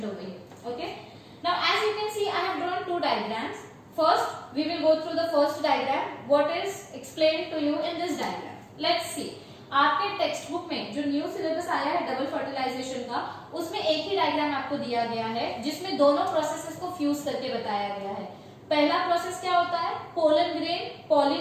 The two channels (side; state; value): both; identical; correlation 1.00